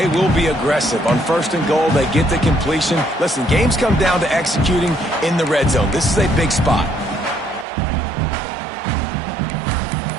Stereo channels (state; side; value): drops out; left; at 7.7 s